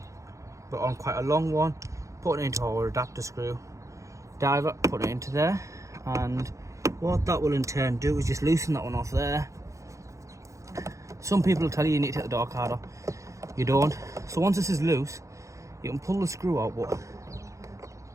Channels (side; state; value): left; late; 0.15 ms